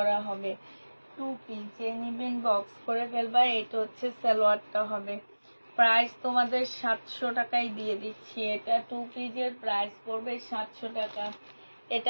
হবে। 2 পিস। যে নিবেন বক্স করে ফেলবা। এটা হচ্ছে সালোয়ারটা হবে। প্রাইস তোমাদের 700 টাকায় দিয়ে দিচ্ছি। এটা 2 পিসের প্রাইস পড়বে 700 টাকা।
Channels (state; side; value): inverted; both; correlation -1.00